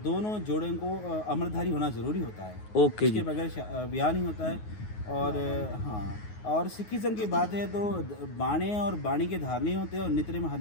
जोड़ों को अमरधारी होना ज़रूरी होता है। ओके जी। इसके बगैर ब्याह नहीं होता है। और हाँ, और सिखिज्म की बात है तो बाणे और बाणी के धारणी होते हैं, और नित्य में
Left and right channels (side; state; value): right; late; 9.5 ms